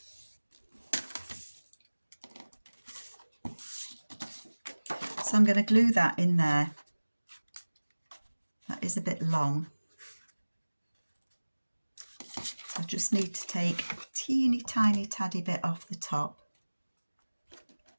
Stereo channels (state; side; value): inverted; both; correlation -1.00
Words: So I'm going to glue that in there. That is a bit long. So I just need to take a teeny tiny taddy bit off the top.